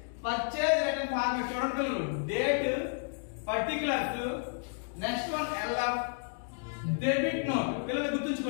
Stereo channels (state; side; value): silent; right; digital silence